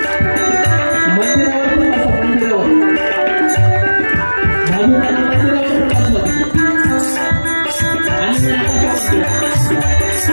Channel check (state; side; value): inverted; both; correlation -1.00